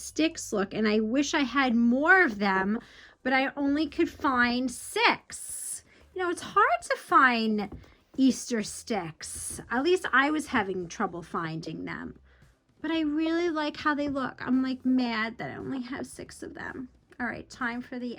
look, and I wish I had more of them, but I only could find 6. You know, it's hard to find Easter sticks. At least I was having trouble finding them. But I really like how they look. I'm like mad that I only have 6 of them. All right, time for the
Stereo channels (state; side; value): identical; both; correlation 1.00